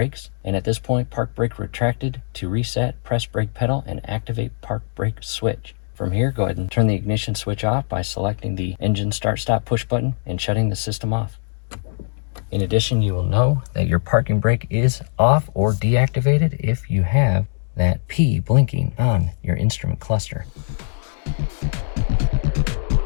And at this point, park brake retracted. To reset, press brake pedal and activate park brake switch. From here, go ahead and turn the ignition switch off by selecting the engine start stop push button and shutting the system off. In addition, you will know that your parking brake is off or deactivated if you have that P blinking on your instrument cluster.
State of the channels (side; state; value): right; silent; digital silence